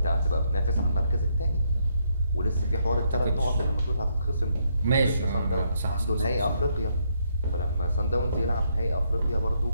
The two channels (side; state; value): both; inverted; correlation -0.74